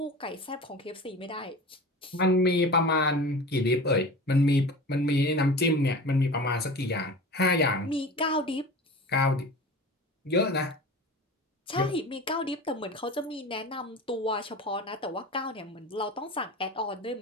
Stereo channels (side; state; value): both; normal; correlation 0.35